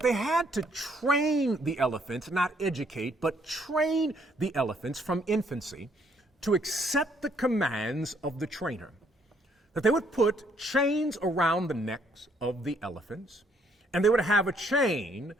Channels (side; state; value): both; normal; correlation 0.68